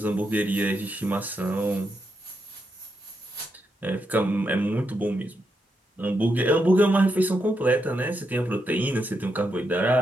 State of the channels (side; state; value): both; normal; correlation 0.82